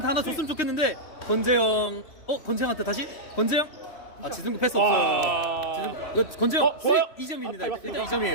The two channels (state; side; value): late; right; 3.1 ms